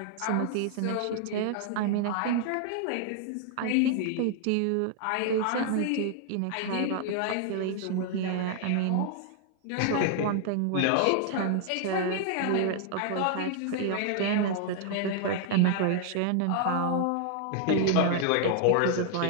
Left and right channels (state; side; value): different; both; correlation 0.00